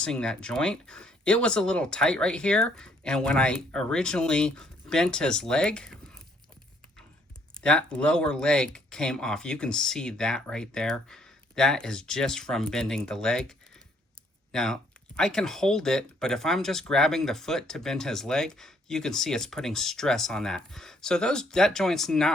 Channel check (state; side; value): normal; both; correlation 0.66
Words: that joint. It was a little tight right here, and when I originally bent his leg, that lower leg came off. You can see that right there. That is just from bending the leg. Now, I can hold it, but if I'm just grabbing the foot to bend his leg, you can see it's putting stress on that. So that joint's